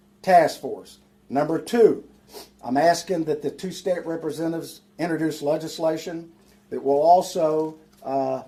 task force. Number two, I'm asking that the two state representatives introduce legislation that will also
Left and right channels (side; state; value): both; identical; correlation 1.00